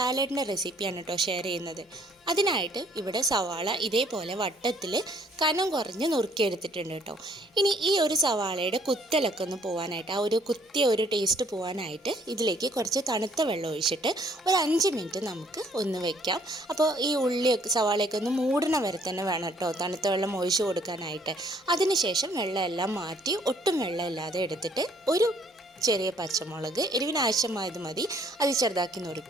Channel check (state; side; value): normal; both; correlation 0.62